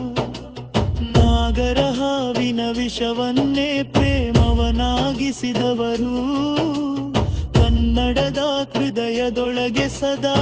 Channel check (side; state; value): both; identical; correlation 1.00